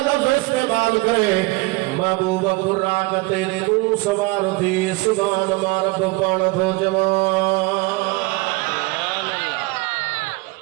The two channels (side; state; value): left; quieter; 23.9 dB